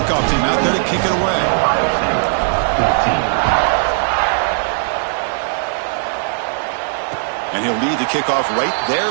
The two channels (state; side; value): silent; left; 67 dB below the other